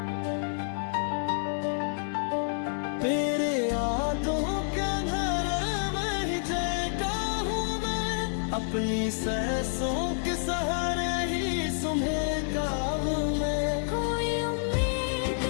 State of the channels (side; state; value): right; silent; 59 dB below the other